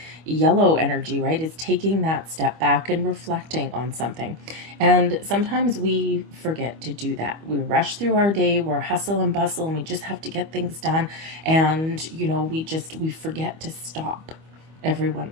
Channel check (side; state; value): left; late; 25 ms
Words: yellow energy, right? Is taking that step back and reflecting on something. And sometimes we forget to do that. We rush through our day, we're hustle and bustle, and we just have to get things done. And, we forget to stop every